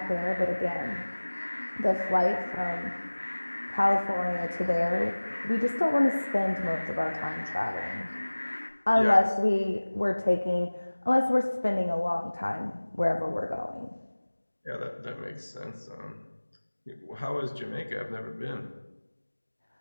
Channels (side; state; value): both; inverted; correlation -1.00